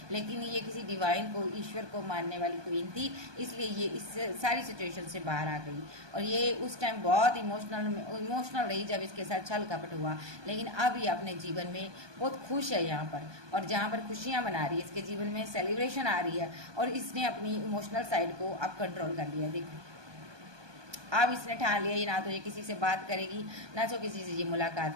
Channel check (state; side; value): late; left; 1.2 ms